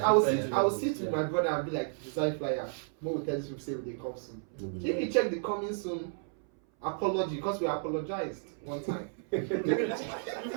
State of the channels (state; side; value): silent; left; 56 dB below the other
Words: will sit with my brother and be like, design flyer. More will tell you say they come soon. If you check the coming soon, apology because we apologized one time. Apologize.